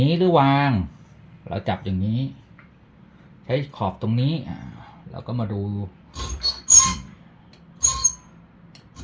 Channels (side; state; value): both; identical; correlation 1.00